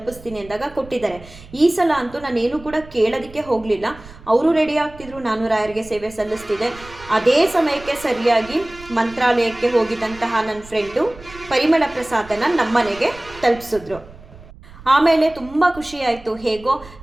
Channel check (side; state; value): right; noise; rumble, 20 dB below the sound